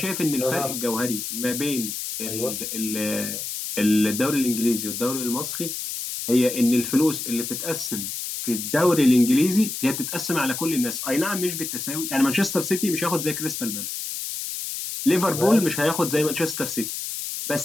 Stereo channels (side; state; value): left; noise; hiss, 5 dB below the sound